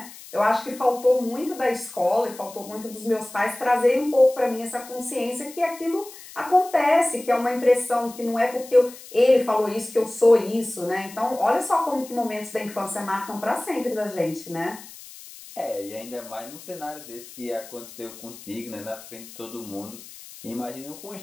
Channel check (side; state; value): left; noise; hiss, 17 dB below the sound